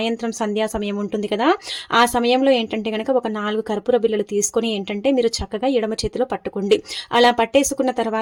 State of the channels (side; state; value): both; identical; correlation 1.00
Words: సంధ్యా సమయం ఉంటుంది కదా, ఆ సమయంలో ఏంటంటే గనక ఒక 4 కర్పూర బిళ్ళలు తీసుకొని ఏంటంటే మీరు చక్కగా ఎడమ చేతిలో పట్టుకోండి. అలా పట్టేసుకున్న